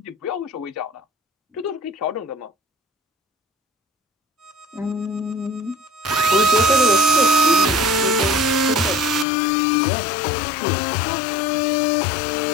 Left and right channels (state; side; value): drops out; right; at 9.2 s